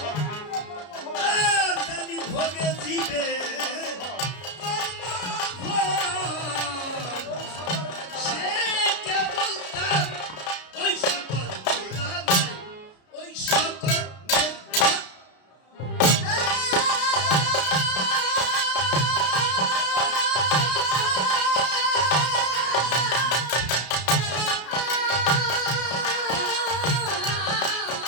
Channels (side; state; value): right; late; 33 ms